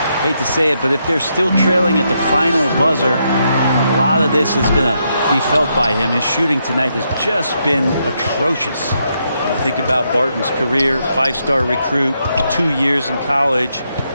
Hate to say it, but if they're still trailing at the final buzzer, a lot of this is going to be felt by him. His shooting tonight has just been atrocious. Think about Barton's career, 5-star recruit, 2 years in college,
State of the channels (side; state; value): both; inverted; correlation -0.79